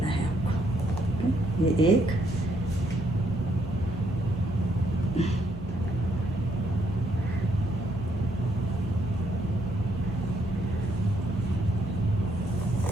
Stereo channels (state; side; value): normal; both; correlation 0.72